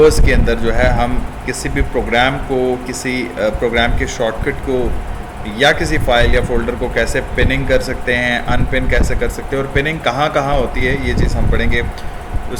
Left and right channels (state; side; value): identical; both; correlation 1.00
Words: के अंदर जो है हम किसी भी प्रोग्राम को, किसी प्रोग्राम के शॉर्टकट को या किसी फाइल या फोल्डर को कैसे पिनिंग कर सकते हैं, अनपिन कैसे कर सकते हैं और पिनिंग कहाँ कहाँ होती है, ये चीज़ हम पढ़ेंगे।